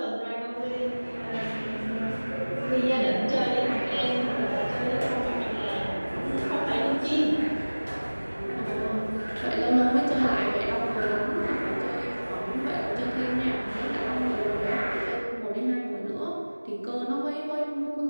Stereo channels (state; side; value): inverted; both; correlation -1.00